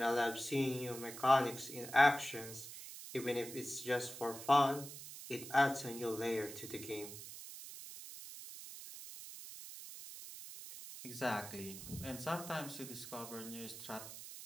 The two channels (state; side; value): noise; right; hiss, 11 dB below the sound